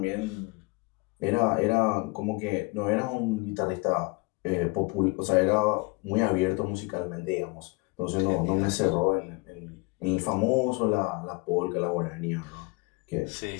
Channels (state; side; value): quieter; right; 26.9 dB